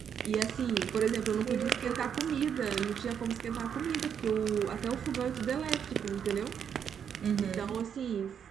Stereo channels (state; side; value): quieter; left; 7.9 dB